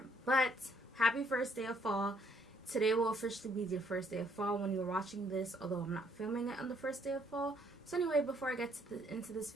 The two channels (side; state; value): both; normal; correlation 0.67